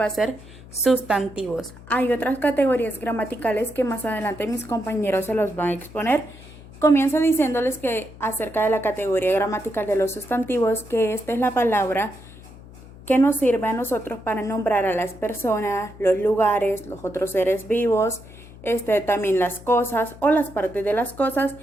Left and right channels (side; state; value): left; noise; hum, 19 dB below the sound